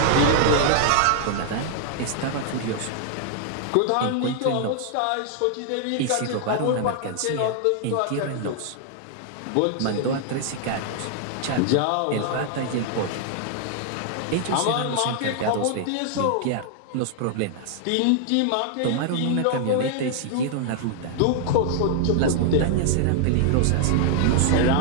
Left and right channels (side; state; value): both; different; correlation 0.00